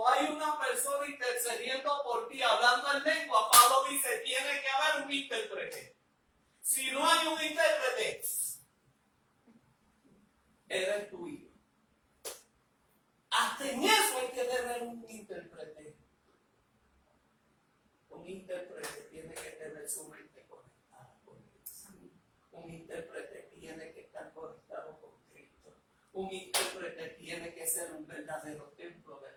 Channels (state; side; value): identical; both; correlation 1.00